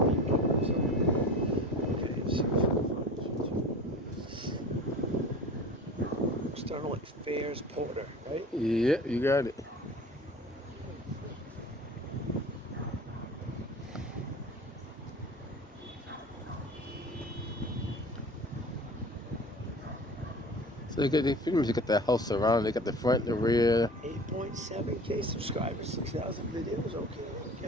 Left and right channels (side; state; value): both; normal; correlation 0.38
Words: External Affairs Porter, right? Yeah, you got it. So they pretty much got the house surrounded. They got the front, the rear. 8.7K subscribers, 6,000 videos.